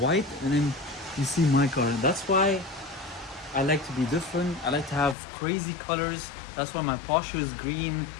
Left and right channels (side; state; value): right; drops out; at 5.2 s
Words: and then you see my car. That's why I like to be different. I like to have crazy colors. That's why my Porsche is green,